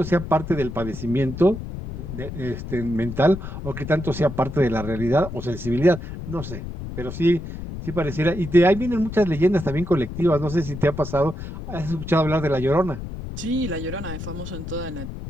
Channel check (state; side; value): noise; left; rumble, 8 dB below the sound